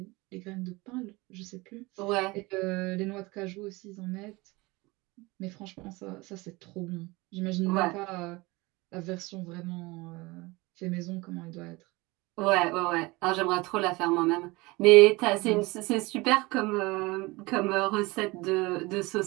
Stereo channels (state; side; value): quieter; left; 23.1 dB